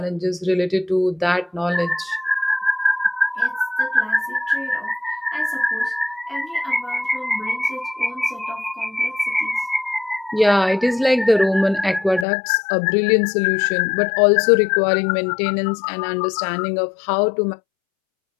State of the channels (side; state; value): right; drops out; at 12.2 s